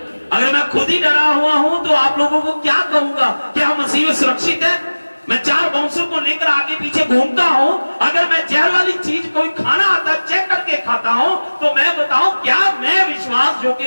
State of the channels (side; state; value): both; inverted; correlation -1.00